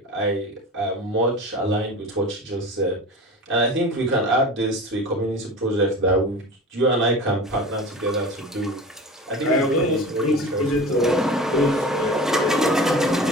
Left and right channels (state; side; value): normal; both; correlation 0.35